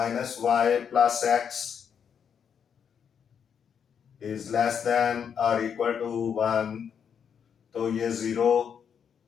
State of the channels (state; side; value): quieter; right; 7.5 dB